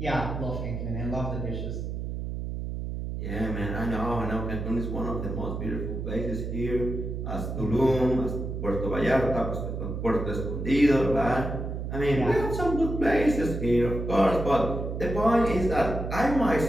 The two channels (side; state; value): right; noise; hum, 5 dB below the sound